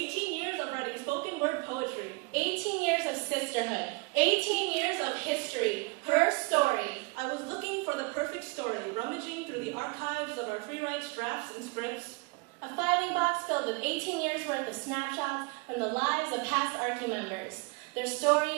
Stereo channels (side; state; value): left; quieter; 29.0 dB